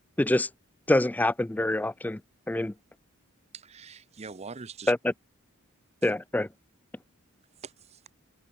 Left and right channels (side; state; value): both; normal; correlation 0.86